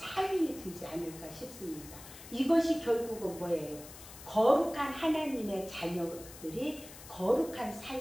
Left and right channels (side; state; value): left; noise; hiss, 16 dB below the sound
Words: 되지 않을까 싶습니다. 이것이 결국은 뭐예요? 거룩한 하나님의 자녀들이 거룩한